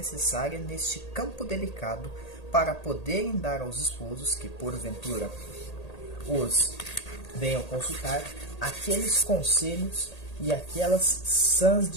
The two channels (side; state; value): right; late; 1.8 ms